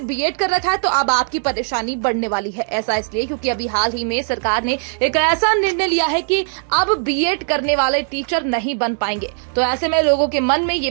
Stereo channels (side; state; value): left; silent; digital silence